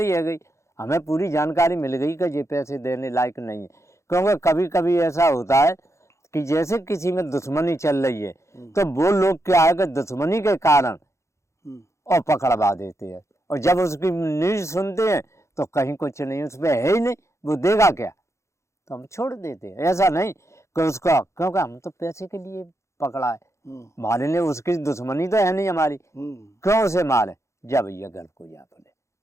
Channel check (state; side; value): late; right; 0.14 ms